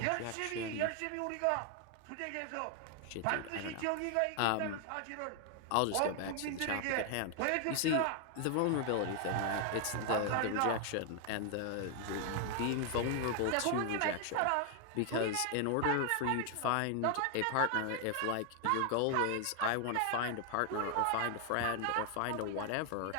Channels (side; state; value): both; different; correlation 0.00